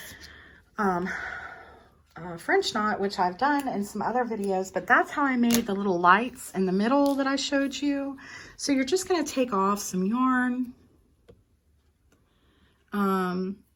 French knot, which I've done in some other videos, but that's how I made the little lights in the middle that I showed you. So you're just going to take off some yarn.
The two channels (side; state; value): both; identical; correlation 1.00